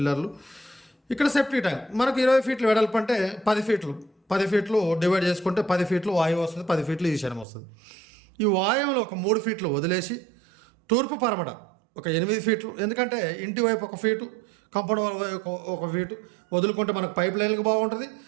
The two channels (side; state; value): left; drops out; at 7.5 s